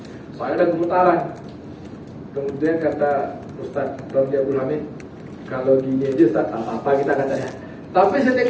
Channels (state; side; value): identical; both; correlation 1.00